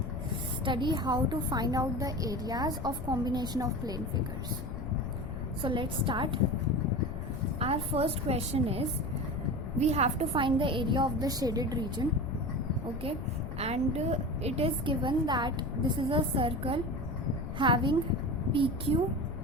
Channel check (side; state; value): left; noise; rumble, 7 dB below the sound